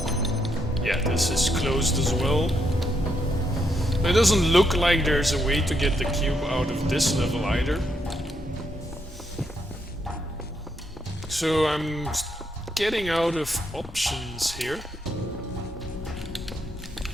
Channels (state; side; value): normal; both; correlation 0.78